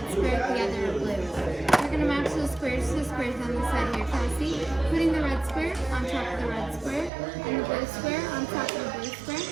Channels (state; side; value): drops out; left; at 7.1 s